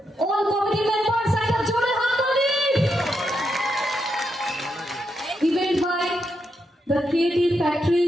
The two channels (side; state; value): both; normal; correlation 0.83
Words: all committee members, একটা জোরে হাততালি। Event by the Creative Factory,